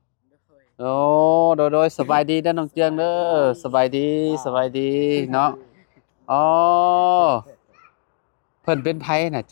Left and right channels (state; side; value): silent; right; digital silence